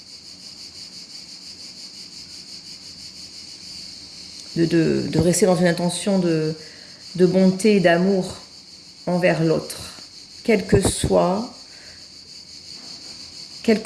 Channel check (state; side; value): identical; both; correlation 1.00